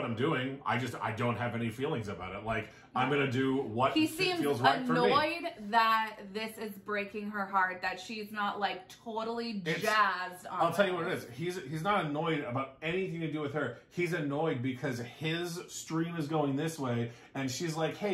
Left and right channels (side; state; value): both; identical; correlation 1.00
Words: I'm doing. I don't have any feelings about it. Like, I'm going to do what feels right for me. He seems annoyed that this is breaking her heart, that she's not, like, totally jazzed on I'll tell you what it is. He's not annoyed about anything to do with her. He's annoyed because his stream is going this way, and she's like,